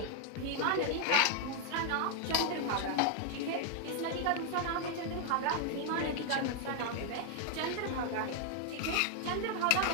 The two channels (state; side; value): different; both; correlation 0.00